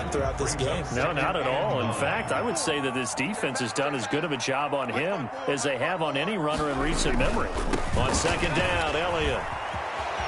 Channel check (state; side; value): identical; both; correlation 1.00